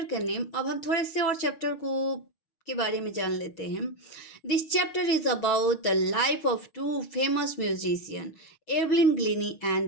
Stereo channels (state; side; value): late; right; 6.4 ms